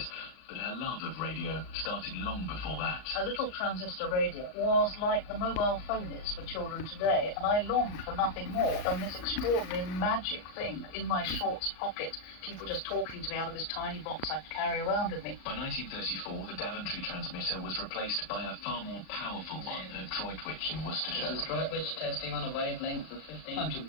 but her love of radio started long before that. A little transistor radio was like the mobile phone is for children today, and I longed for nothing more than this extraordinary magic thing in my shorts pocket, people just talking to me out of this tiny box I carry around with me. By 1934, the Daventry transmitter was replaced by a far more powerful one at Droitwich in Worcestershire. This is Droitwich testing on a wavelength of 15. I'm Jim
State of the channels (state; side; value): late; right; 39 ms